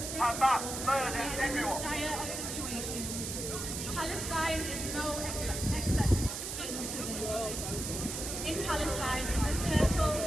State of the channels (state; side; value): noise; right; hiss, 5 dB below the sound